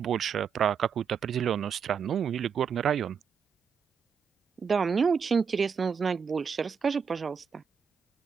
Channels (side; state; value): left; quieter; 6.6 dB